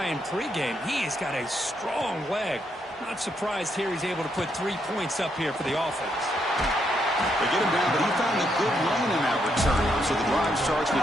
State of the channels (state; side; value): normal; both; correlation 0.77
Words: in pregame. He has got a strong leg. Not surprised here he's able to put 3 points up here for the offense. They get him down, but he found a good lane in that return, so the drive starts with